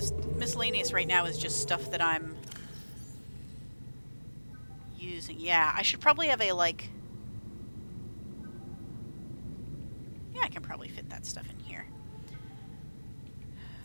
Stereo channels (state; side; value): inverted; both; correlation -1.00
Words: miscellaneous right now is just stuff that I'm using. Yeah, I should probably have a, like... yeah, I can probably fit that stuff in here.